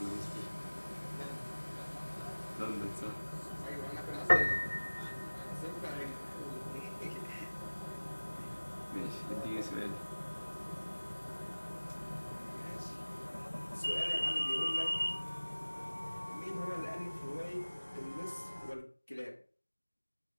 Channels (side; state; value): both; inverted; correlation -1.00